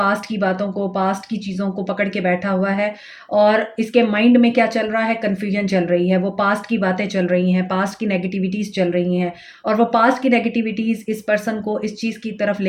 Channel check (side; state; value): both; identical; correlation 1.00